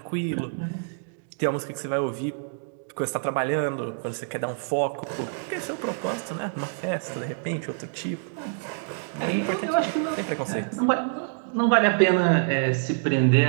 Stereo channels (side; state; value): left; silent; digital silence